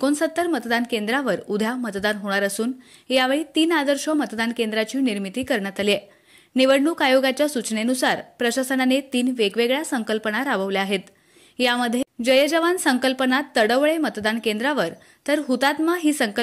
मतदान केंद्रावर उद्या मतदान होणार असून यावेळी 3 आदर्श मतदान केंद्राची निर्मिती करण्यात आली आहे। निवडणूक आयोगाच्या सूचनेनुसार प्रशासनाने 3 वेगवेगळ्या संकल्पना राबवल्या आहेत। यामध्ये जय जवान संकल्पना तडवळे मतदान केंद्रावर तर हुतात्मा ही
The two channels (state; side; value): identical; both; correlation 1.00